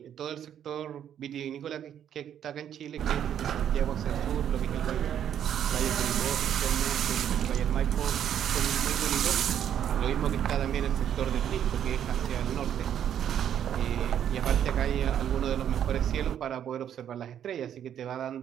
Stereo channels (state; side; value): quieter; left; 9.7 dB